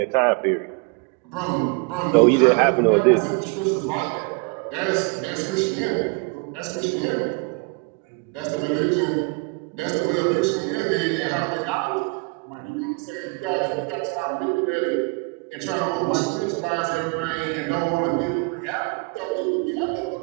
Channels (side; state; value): left; quieter; 30.7 dB